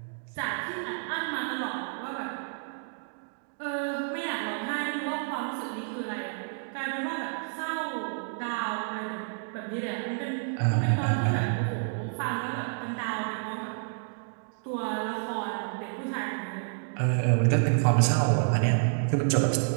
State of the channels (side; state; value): left; silent; digital silence